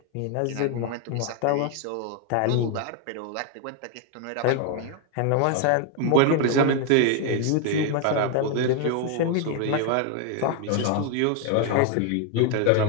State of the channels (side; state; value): both; different; correlation 0.01